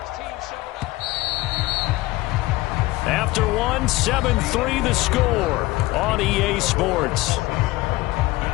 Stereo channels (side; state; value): right; quieter; 19.5 dB